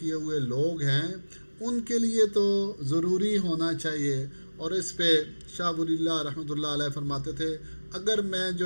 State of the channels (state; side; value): inverted; both; correlation -1.00